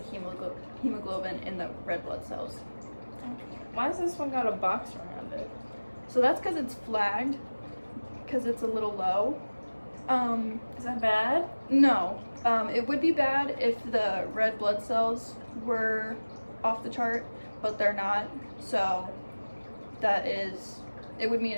hemoglobin in the red blood cells. Okay. Why has this one got a box around it? So that's because it's flagged, because it's a little low. Is that bad? No. It would be bad if the red blood cells were off the chart, but they're not. So it would mean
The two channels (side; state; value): both; inverted; correlation -1.00